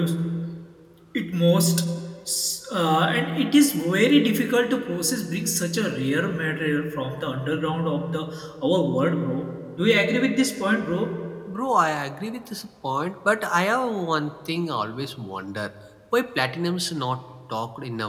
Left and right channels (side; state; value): both; identical; correlation 1.00